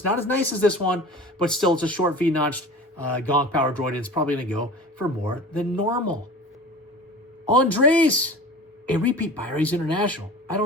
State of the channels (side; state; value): both; normal; correlation 0.37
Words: not as nice as this one, but still it's a short V-notched Gonk power droid. And it's probably going to go for more than normal. Andres, a repeat buyer. He's international. I